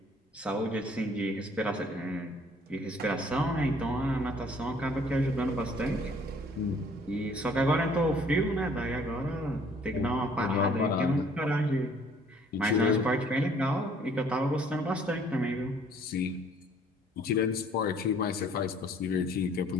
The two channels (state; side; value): normal; both; correlation 0.58